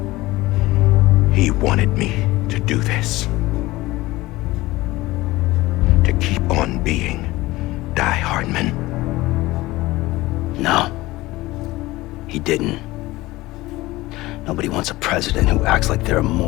He wanted me to do this. To keep on being Die Hardman. No. He didn't. Nobody wants a president who acts like they're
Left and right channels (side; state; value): right; quieter; 19.1 dB